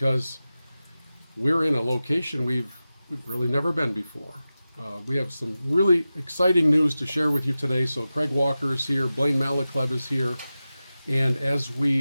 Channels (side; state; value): both; inverted; correlation -0.95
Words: we're in a location we've really never been before. We have some really exciting news to share with you today. So Craig Walker is here, Blaine Malochleb is here, and as